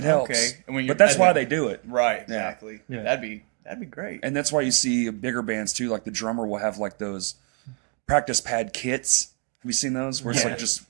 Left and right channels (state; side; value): quieter; left; 36.5 dB